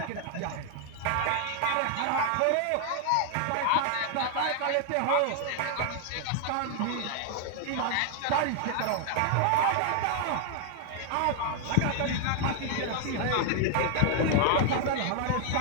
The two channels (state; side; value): different; both; correlation 0.00